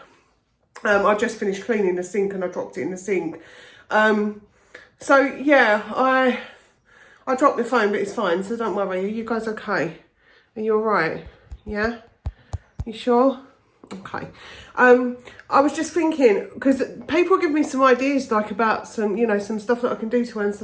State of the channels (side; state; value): both; identical; correlation 1.00